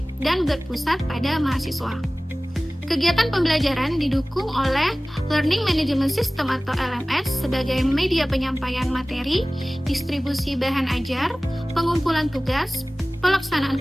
dan berpusat pada mahasiswa. Kegiatan pembelajaran didukung oleh Learning Management System atau LMS sebagai media penyampaian materi, distribusi bahan ajar, pengumpulan tugas, pelaksanaan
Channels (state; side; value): normal; both; correlation 0.98